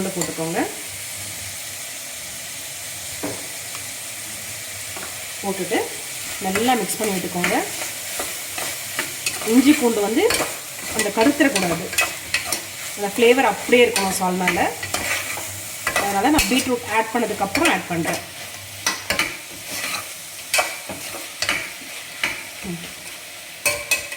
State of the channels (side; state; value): both; identical; correlation 1.00